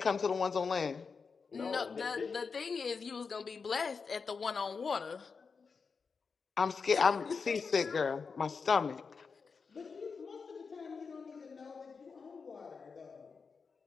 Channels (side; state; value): right; quieter; 5.2 dB